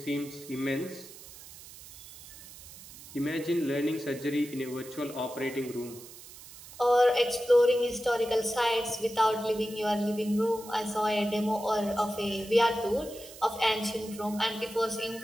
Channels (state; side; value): noise; right; hiss, 17 dB below the sound